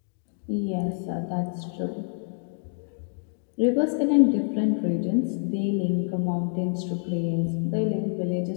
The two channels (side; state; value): right; silent; 58 dB below the other